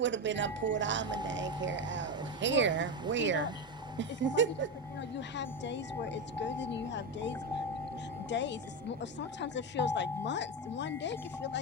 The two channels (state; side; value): normal; both; correlation 0.14